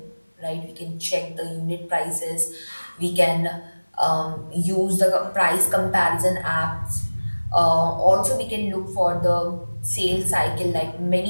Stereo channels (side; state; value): both; inverted; correlation -1.00